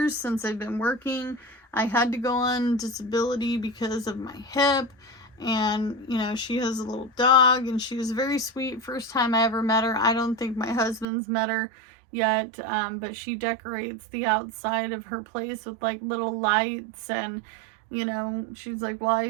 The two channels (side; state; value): left; drops out; at 11.1 s